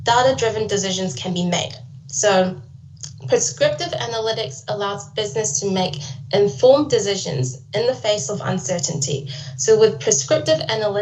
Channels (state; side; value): identical; both; correlation 1.00